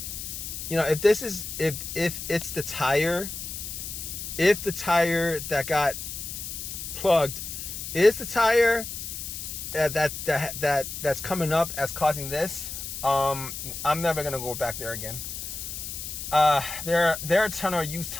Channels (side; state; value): left; noise; hiss, 7 dB below the sound